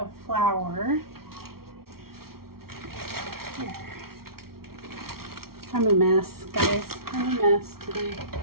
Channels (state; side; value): late; left; 0.94 ms